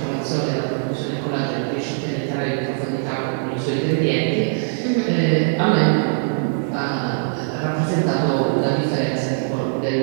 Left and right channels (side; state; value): left; silent; digital silence